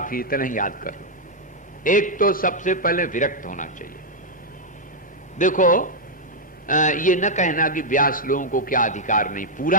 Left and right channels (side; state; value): both; normal; correlation -0.03